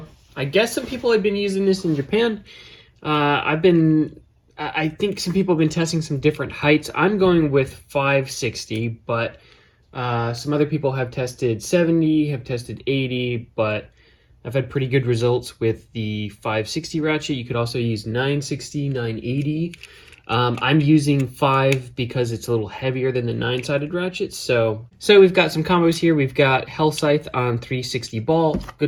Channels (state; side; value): identical; both; correlation 1.00